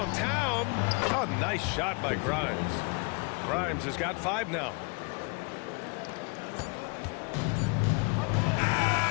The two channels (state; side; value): quieter; right; 32.5 dB